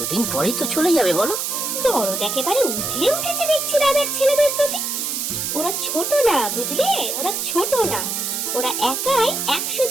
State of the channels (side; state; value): right; noise; hiss, 2 dB below the sound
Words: পরেই তো চলে যাবে বলো। দরদ একেবারে উঠে উঠেছে দেখছি দাদার ছেলেদের প্রতি। ওরা ছোট না, বুঝলে? ওরা ছোট না, ওরা একাই 100